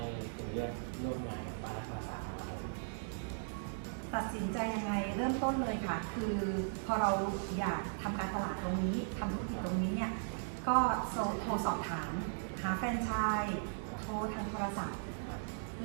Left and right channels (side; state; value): left; silent; digital silence